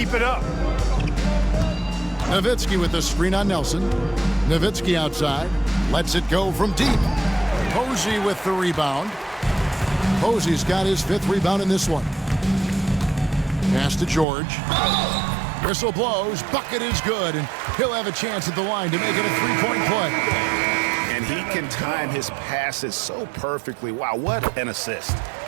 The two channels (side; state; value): left; drops out; at 14.2 s